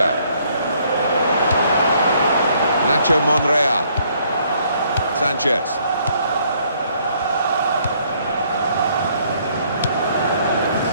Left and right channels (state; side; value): inverted; both; correlation -0.66